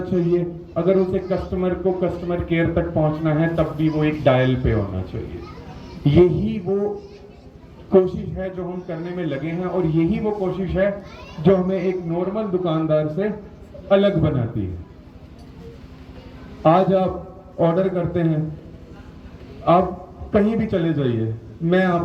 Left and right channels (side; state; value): both; identical; correlation 1.00